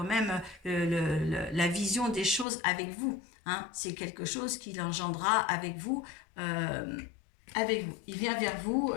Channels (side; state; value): right; drops out; at 2.5 s